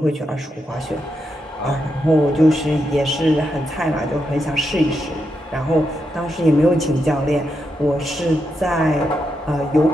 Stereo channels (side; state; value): both; normal; correlation 0.84